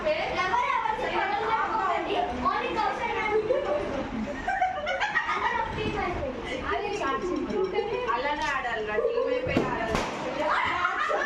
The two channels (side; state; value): both; identical; correlation 1.00